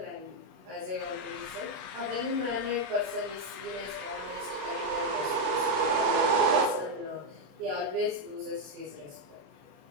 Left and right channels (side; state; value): left; late; 27 ms